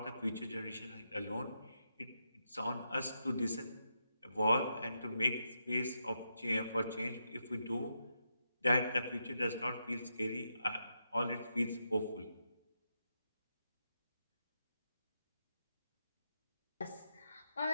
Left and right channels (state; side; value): inverted; both; correlation -0.83